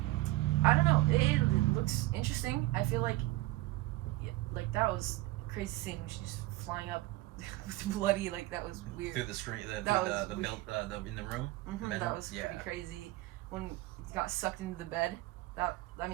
don't know. It looks interesting. I feel like that was a crazy scene when she's flying up with bloody, like that was weird. Through the screen, in the room. That was pretty crazy. When he got sucked into the bed,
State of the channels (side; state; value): left; quieter; 18.5 dB